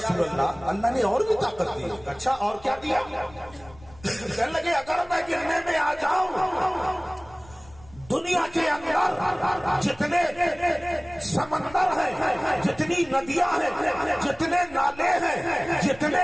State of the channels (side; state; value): left; noise; rumble, 23 dB below the sound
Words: اللہ، اللہ نے اور بھی طاقت دی ہے۔ اچھا اور کیا دیا؟ کہنے لگے اگر میں گرنے میں آ جاؤں دنیا کے اندر جتنے سمندر ہیں، جتنی ندیاں ہیں، جتنے نالے ہیں، جتنے